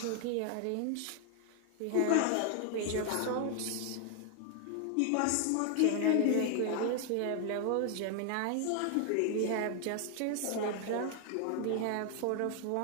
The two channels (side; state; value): both; different; correlation 0.00